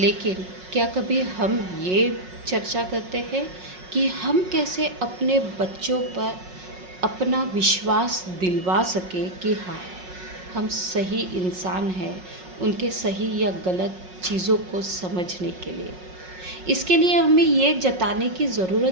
क्या कभी हम ये चर्चा करते हैं कि हम कैसे अपने बच्चों पर अपना विश्वास दिलवा सके कि हाँ, हम सही इंसान हैं, उनके सही या गलत चीज़ों को समझने के लिए। इसके लिए हमें ये जताने की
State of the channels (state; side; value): late; left; 5.5 ms